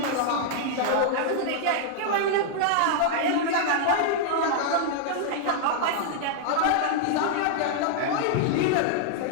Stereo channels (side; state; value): both; different; correlation -0.01